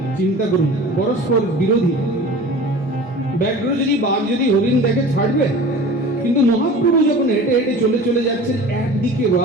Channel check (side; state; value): both; normal; correlation 0.39